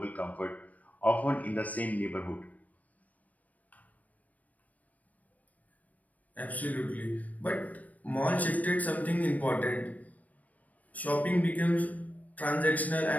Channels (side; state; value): right; late; 0.073 ms